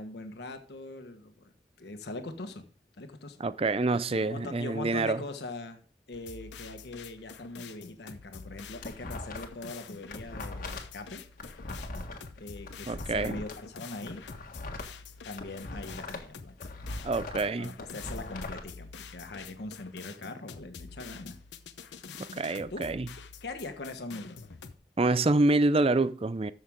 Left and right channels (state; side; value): normal; both; correlation 0.51